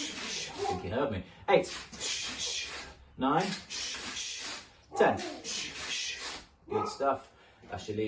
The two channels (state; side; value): identical; both; correlation 1.00